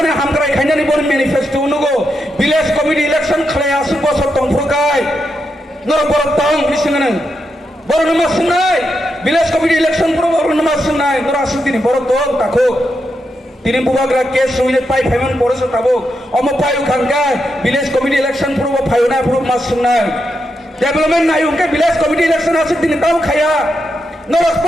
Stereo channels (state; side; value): normal; both; correlation 0.84